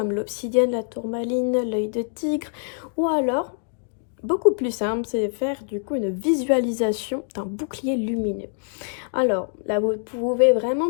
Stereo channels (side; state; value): right; silent; 62 dB below the other